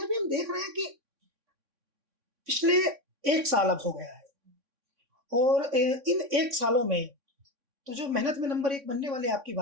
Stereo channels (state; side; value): late; left; 3.6 ms